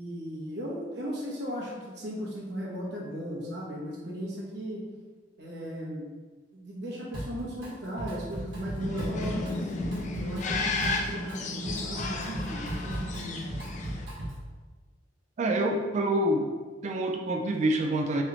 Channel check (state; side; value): normal; both; correlation 0.50